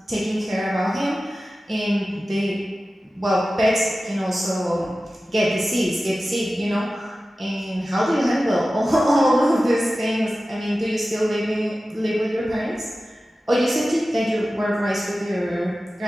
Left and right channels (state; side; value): normal; both; correlation 0.95